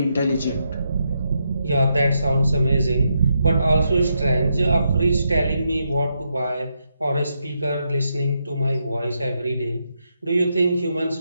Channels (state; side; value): inverted; both; correlation -0.82